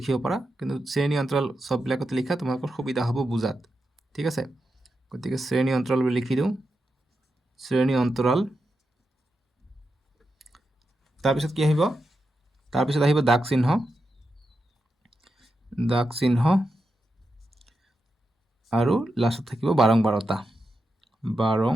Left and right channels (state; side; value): normal; both; correlation 0.88